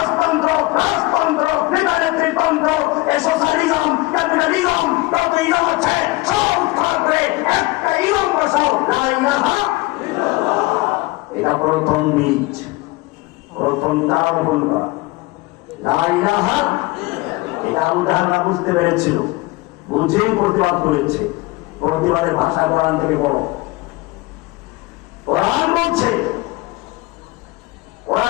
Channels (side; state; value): right; quieter; 22.1 dB